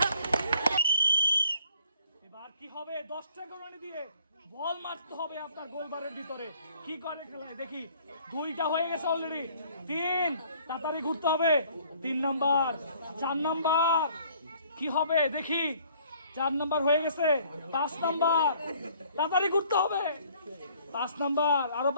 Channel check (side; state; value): both; inverted; correlation -0.58